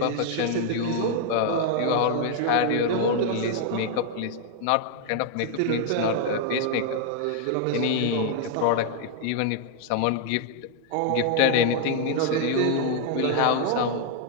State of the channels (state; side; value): different; both; correlation 0.00